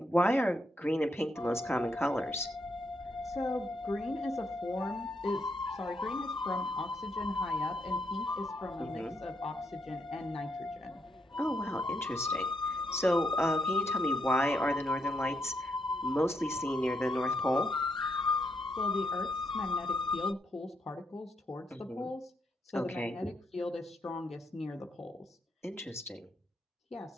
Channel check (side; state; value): both; normal; correlation 0.77